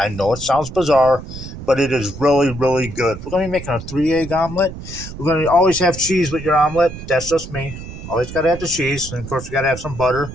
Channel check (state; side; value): noise; right; rumble, 11 dB below the sound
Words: know it sounds bizarre, but it is really, really good. We're going to be making a 3-egg omelet. We're going to always have cheese with your omelet. That's just me. Always got to have the cheese. And, of course, we got to have some butter.